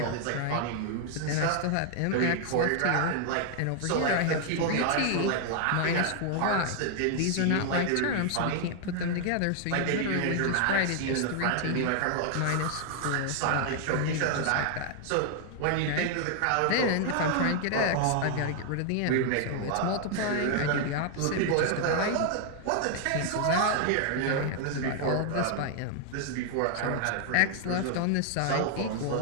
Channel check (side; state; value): both; different; correlation 0.00